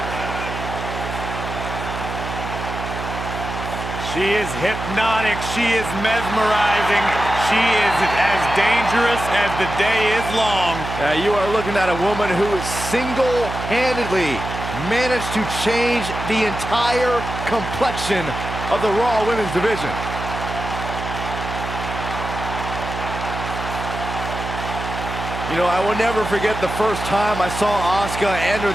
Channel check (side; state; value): right; noise; hum, 7 dB below the sound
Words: She is hypnotic. She is mesmerizing. She is as dangerous as the day is long. You are looking at a woman who single-handedly managed to change the entire complexion of the Raw Women's division. You know, I will never forget the first time I saw Asuka enter